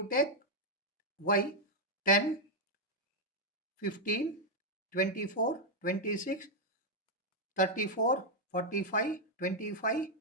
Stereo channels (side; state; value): both; normal; correlation -0.01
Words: take y 10, 15, 24, 26, 34, 45, 25,